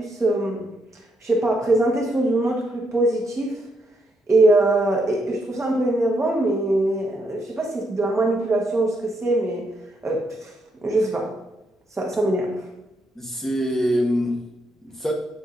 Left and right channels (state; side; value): normal; both; correlation 0.77